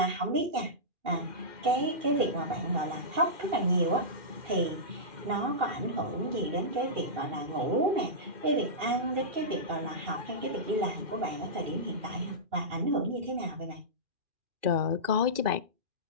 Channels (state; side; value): late; left; 2.4 ms